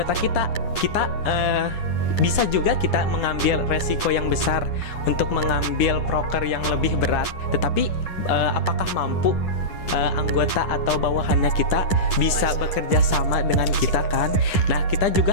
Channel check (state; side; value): late; right; 10 ms